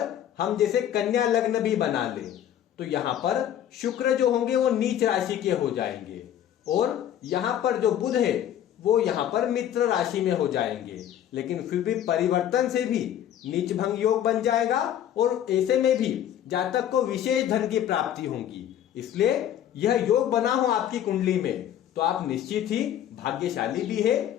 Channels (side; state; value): right; quieter; 10.7 dB